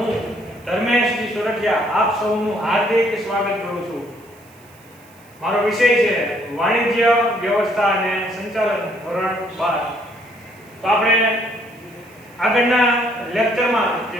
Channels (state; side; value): noise; right; hiss, 28 dB below the sound